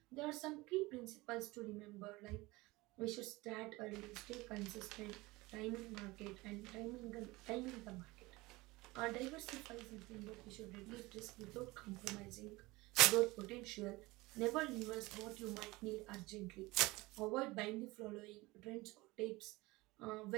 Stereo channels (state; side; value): quieter; left; 21.6 dB